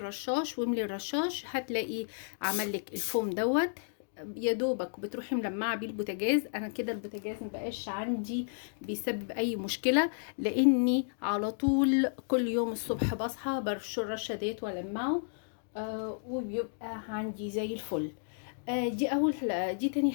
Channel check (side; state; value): right; silent; digital silence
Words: واملي الرشاش، هتلاقي عمل لك الفوم دوت. يا دوبك بتروحي ملمعه بيه البوتاجاز. انا كده البوتاجاز مبقاش عندي بيسبب اي مشكله، لاني على طول كل يوم الصبح بصحى برش الرشه ديت والمعه، وبيبقى عندي زي الفل. دي تاني